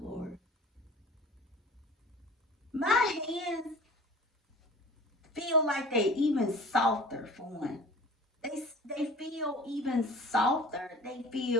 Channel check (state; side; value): normal; both; correlation 0.43